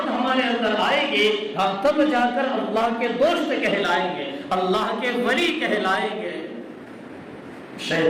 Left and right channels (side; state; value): both; identical; correlation 1.00